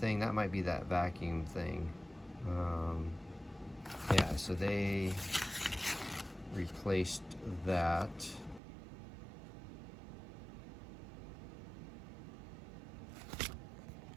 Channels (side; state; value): left; drops out; at 8.6 s